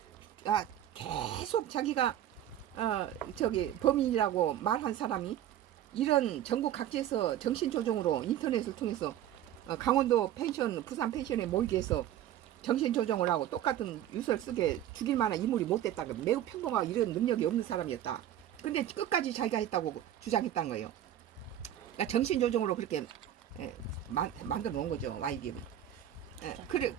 계속 자기가 범인이라고 말한 사람이 이런 전국 각지에서 정신조정으로 인터넷을 통해서 강원도 펜션, 부산 펜션에 모이게 해서 정신조정을 하고 똑같은 유서를 쓰게 죽일 만한 인물이 못 됐다. 매우 평범하고 이런 능력이 없는 사람이었다. 근데 끝까지 자기가 했다고 주장했다는 거예요. 그러니까 정신조정으로 그렇게 만들어 놓은 거죠. YDM이.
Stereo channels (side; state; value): left; quieter; 11.5 dB